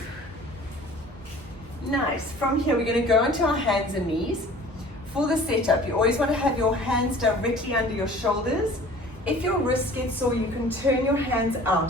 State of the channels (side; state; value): both; normal; correlation 0.46